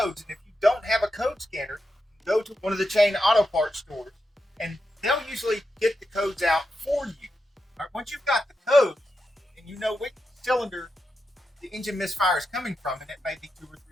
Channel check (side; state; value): both; normal; correlation 0.87